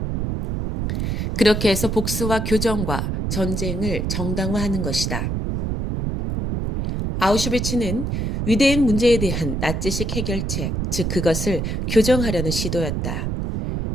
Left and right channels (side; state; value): right; noise; rumble, 1 dB below the sound